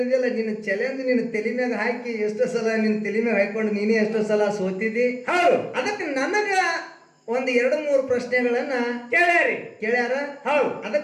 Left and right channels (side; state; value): both; identical; correlation 1.00